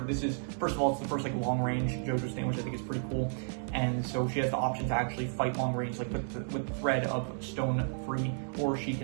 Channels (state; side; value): silent; left; digital silence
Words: is, first of all, it's the first like long range JoJo stand, which I think is pretty cool. And so she has the option to actually fight long range like with the thread of Stone Free, or she